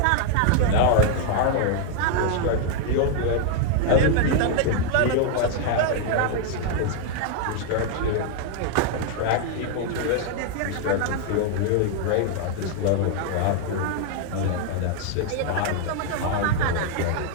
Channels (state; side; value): different; both; correlation 0.00